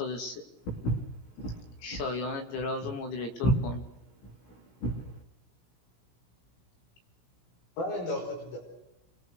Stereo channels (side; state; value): right; late; 17 ms